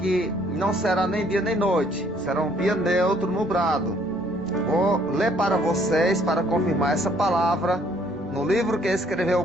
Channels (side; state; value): both; normal; correlation 0.63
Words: não será nem dia nem noite. Será um dia neutro, nublado. Vou ler para vocês, para confirmar essa palavra, no livro que escreveu